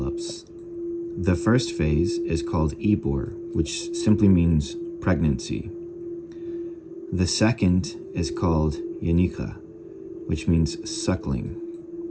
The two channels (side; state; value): both; identical; correlation 1.00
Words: The first phase is called Ibor, which simply means pregnancy. The second is called Yanika, which means suckling.